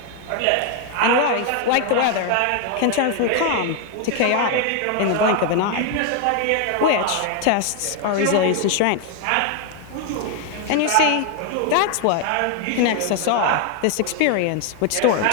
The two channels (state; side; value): different; both; correlation 0.01